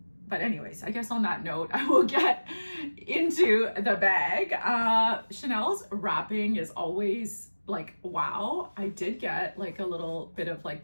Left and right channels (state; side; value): inverted; both; correlation -1.00